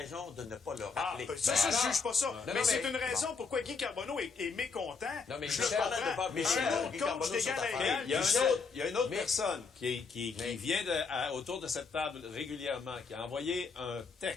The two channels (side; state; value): right; quieter; 4.9 dB